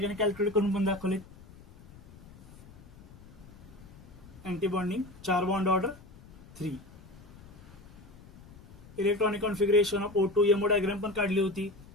कॅल्क्युलेट करून पण दाखवलेत. Anti bonding 4 bond order 3. Electronic configuration of O2 MO diagram पण काढली होती.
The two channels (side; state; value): left; noise; rumble, 20 dB below the sound